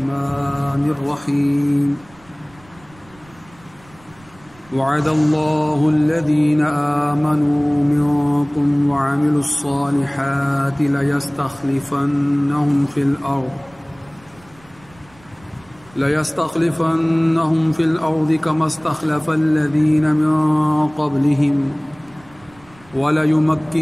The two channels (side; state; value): right; noise; rumble, 27 dB below the sound